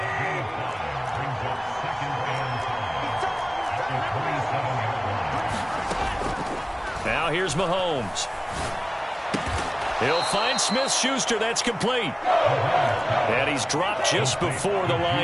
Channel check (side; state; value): both; identical; correlation 1.00